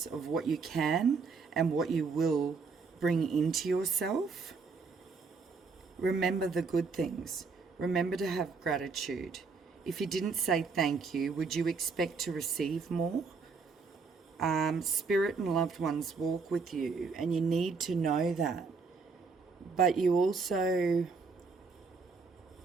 of what you can and what you will bring into yourself. Remember the good things. Remember to have gratitude. If you didn't say thank you, would you expect to receive more? Spirit and loved ones walk with you, and you need to know that. But you also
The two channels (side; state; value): left; quieter; 4.8 dB